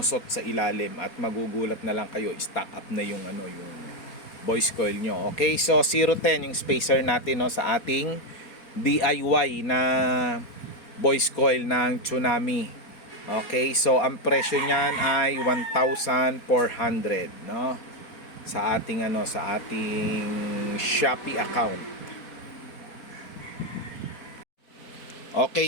sa ilalim at magugulat na lang kayo, stock up na yung yung voice coil nyo. Okay, so 010 yung spacer natin, no, sa ating DIY na voice coil ng Tsunami. Okay, so ang presyo niyan ay 1,400, no, sa ating sa ating Shopee account. Okay,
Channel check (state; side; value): late; right; 4.2 ms